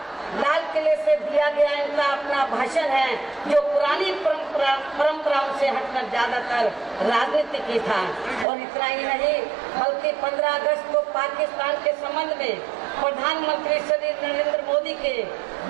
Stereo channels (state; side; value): drops out; left; at 8.5 s